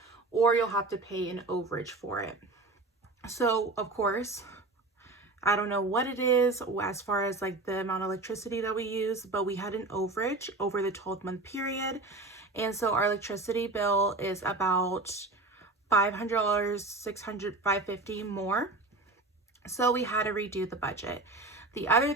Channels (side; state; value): left; quieter; 3.2 dB